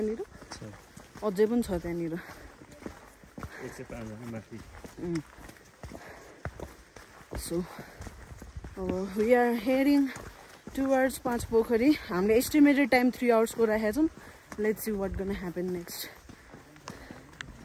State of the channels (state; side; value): identical; both; correlation 1.00